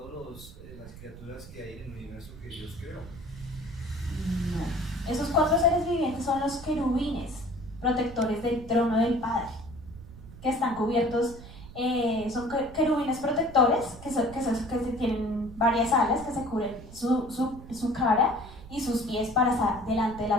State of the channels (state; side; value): noise; right; rumble, 16 dB below the sound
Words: las criaturas que hay en el universo que Dios creó. No. Esos 4 seres vivientes son los querubines, protectores del trono del Padre, que están cubiertos, son querubines protectores, que tienen varias alas, que se cubren su cara y sus pies para estar delante de